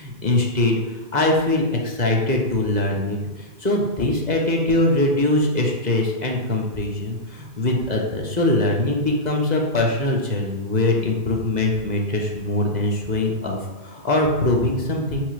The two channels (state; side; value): late; left; 2.0 ms